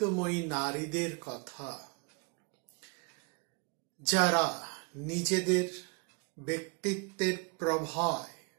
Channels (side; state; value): left; quieter; 31.9 dB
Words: নারীদের কথা, যারা নিজেদের ব্যক্তিত্বের প্রভায়